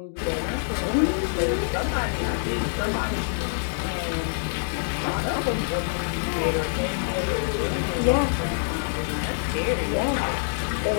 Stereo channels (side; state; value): right; silent; digital silence